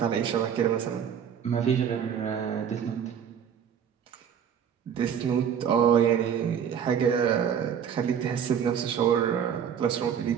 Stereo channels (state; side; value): quieter; left; 8.2 dB